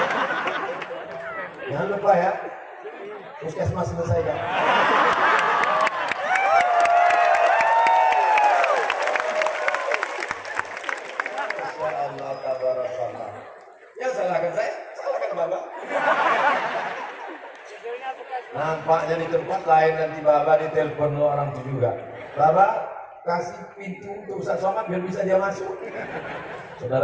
Jangan lupa ya, puskesmas selesaikan. Masyaallah tabarakallah. Ya salahkan saya, salahkan Bapak. Nampaknya di tempat lain nanti Bapak ditelepon orang itu juga. Bapak kasih pintu untuk Ustaz Somad biar bisa dia masuk.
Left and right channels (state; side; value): identical; both; correlation 1.00